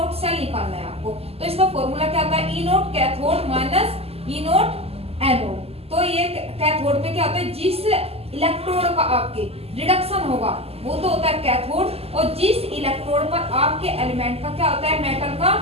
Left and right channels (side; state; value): left; late; 0.29 ms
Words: सेल निकालना है आपको, तो इसका फॉर्मूला क्या आता है, ई नोट कैथोड माइनस ई नोट एनोड। तो ये कैथोड पे क्या होता है, जिस इलेक्ट्रोड का आपके रिडक्शन होगा वो तो होता है कैथोड, और जिस इलेक्ट्रोड पर आपके एलिमेंट का क्या होता है, मेटल का